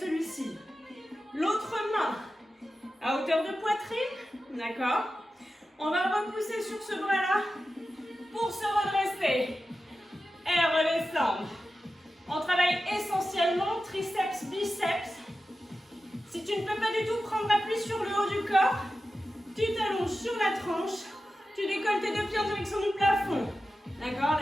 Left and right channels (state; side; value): normal; both; correlation 0.92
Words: L'autre main à hauteur de poitrine, d'accord? On va repousser sur ce bras-là pour se redresser et redescendre. On travaille essentiellement triceps, biceps Si tu ne peux pas du tout prendre appui sur le haut du corps, tu t'allonges sur la tranche, tu décolles tes deux pieds en direction du plafond. D'accord?